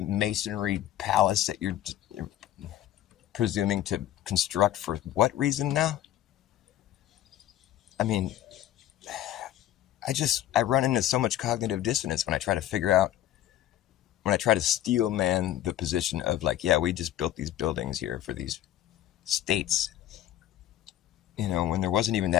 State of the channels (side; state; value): right; quieter; 12.5 dB